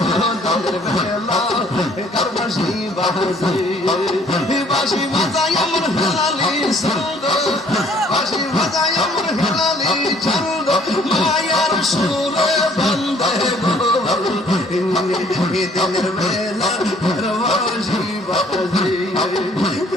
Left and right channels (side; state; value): both; normal; correlation 0.60